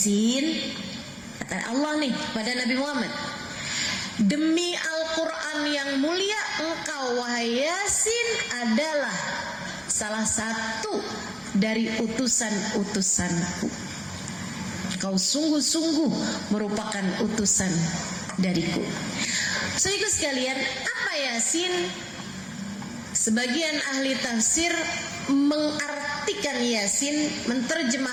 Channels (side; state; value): both; identical; correlation 1.00